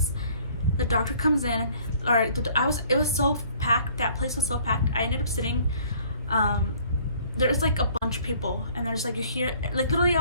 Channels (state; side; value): inverted; both; correlation -0.57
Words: The doctor comes in, it was so packed. That place was so packed. I ended up sitting, there's like a bunch of people, and there's like, you hear, like, literally I